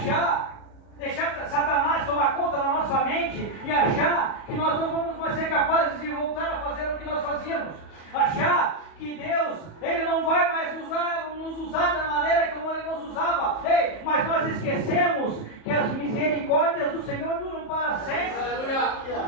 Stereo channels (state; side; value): late; right; 37 ms